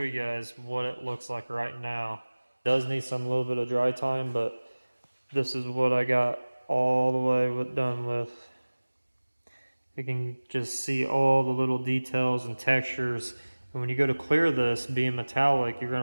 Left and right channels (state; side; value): inverted; both; correlation -1.00